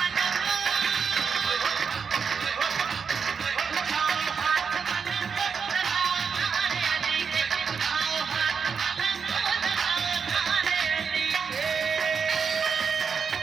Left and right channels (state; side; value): quieter; left; 6.1 dB